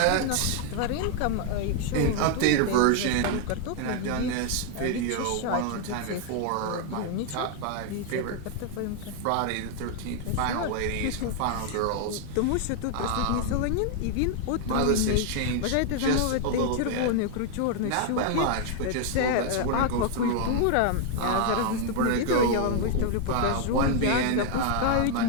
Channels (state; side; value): different; both; correlation 0.00